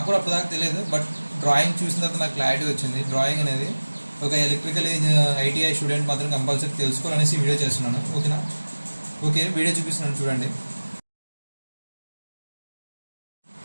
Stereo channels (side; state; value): both; inverted; correlation -1.00